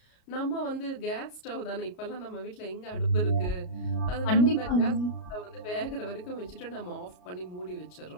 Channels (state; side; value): late; right; 33 ms